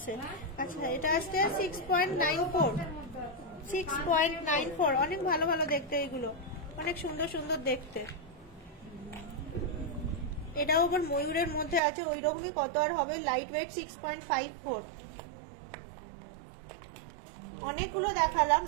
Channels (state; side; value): drops out; left; at 11.8 s